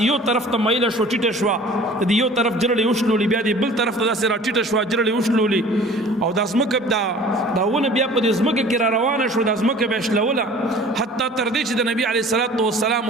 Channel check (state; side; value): normal; both; correlation 0.46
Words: یو طرف ته میله شو ټیټه شوه د یو طرف جرړې وشلولې بیا د بل طرف ته داسې را ټیټه شوه جرړې وشلولې او دا ځمکه دا ونه بیا په دې ځمکه کې را روانه شو دا ځمکه بیا شلوله حتی تر دې چې د نبي علیه الصلاۃ والسلام